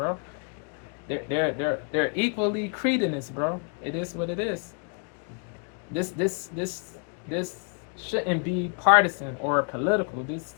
They're equally cretinous, bro. It is what it is. This shouldn't be partisan or political.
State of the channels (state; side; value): quieter; right; 38.7 dB